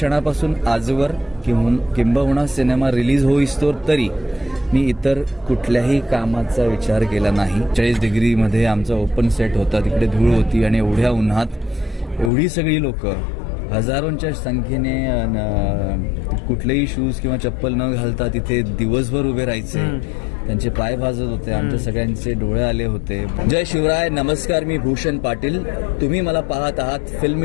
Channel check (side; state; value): right; drops out; at 12.3 s